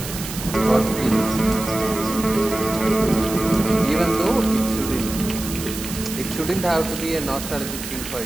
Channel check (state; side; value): noise; right; hiss, 9 dB below the sound